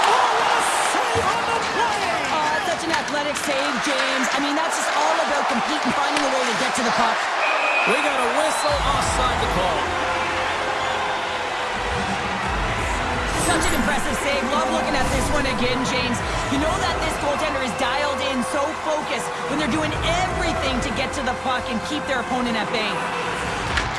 Oh, what a save on the play! Such an athletic save, James. I mean, that's just all about competing, finding a way to get to the puck. We got a whistle offside the call. Such an impressive save. Love looking at this one again, James. You know that this goaltender is dialed in, so focused, when they're doing everything to get to the puck and keep their opponent at bay.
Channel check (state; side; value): identical; both; correlation 1.00